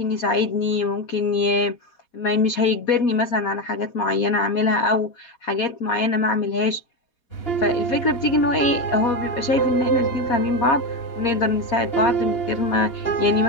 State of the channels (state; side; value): late; right; 4.2 ms